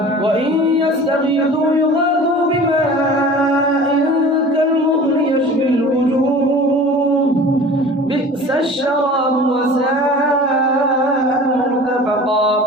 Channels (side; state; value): both; normal; correlation 0.41